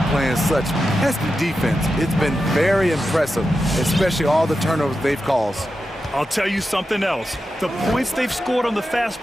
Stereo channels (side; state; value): both; normal; correlation 0.90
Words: playing such pesky defense. It's been very impressive, especially all the turnovers they've caused. I'll tell you something else. The points they've scored on the fast